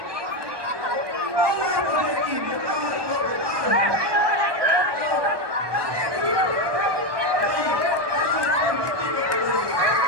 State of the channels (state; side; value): late; left; 1.2 ms